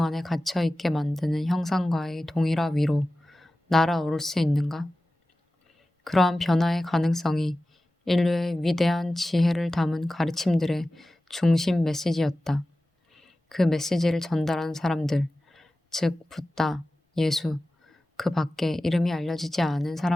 안에 갇혀 있게 만드는 형상과의 동일화 위로 날아오를 수 있는가? 그러한 변화의 가능성이 인류의 위대한 지혜를 담은 가르침들의 중심 메시지였다. 그 메시지를 전달한 사람들, 즉 붓다, 예수, 그 밖에 이름이 알려지지 않은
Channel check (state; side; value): normal; both; correlation 0.95